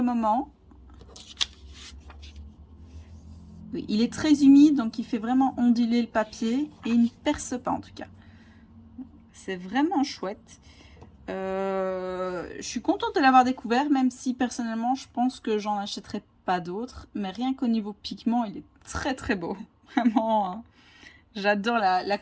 moment. Oui, il est très humide, donc il fait vraiment onduler le papier. Et il ne perce pas en tout cas. C'est vraiment chouette. Je suis contente de l'avoir découvert, même si personnellement je pense que j'en achèterai pas d'autres. Mais rien qu'au niveau pigment, il est très très beau. Vraiment, hein. J'adore la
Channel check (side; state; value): both; identical; correlation 1.00